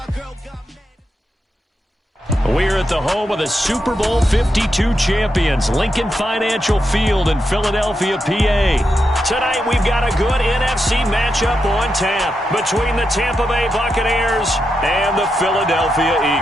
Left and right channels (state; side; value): normal; both; correlation 0.85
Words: girl got mad. We're at the home of the Super Bowl 52 champions, Lincoln Financial Field in Philadelphia, PA. Tonight, we've got a good NFC matchup on tap between the Tampa Bay Buccaneers and the Philadelphia